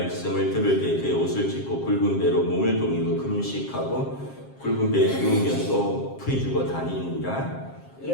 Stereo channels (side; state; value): right; late; 7.5 ms